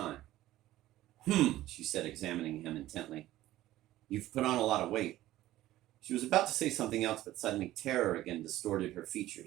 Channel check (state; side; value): quieter; left; 15.2 dB